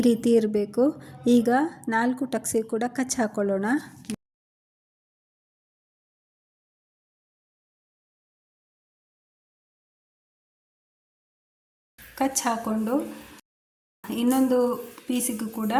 ರೀತಿ ಇರಬೇಕು. ಈಗ 4 ಟಕ್ಸಿಗೆ ಕೂಡ ಕಚ್ ಹಾಕೊಳ್ಳೋಣ. ಕಚ್ ಹಾಕ್ಕೊಂಡು ಇನ್ನೊಂದು ಪೀಸಿಗೂ ಕೂಡ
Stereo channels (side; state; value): both; identical; correlation 1.00